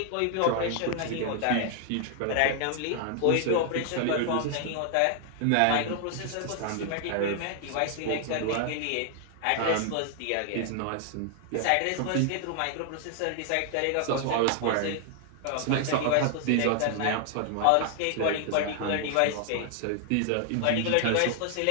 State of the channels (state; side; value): different; both; correlation 0.00